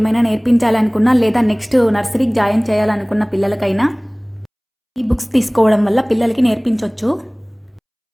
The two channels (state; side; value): identical; both; correlation 1.00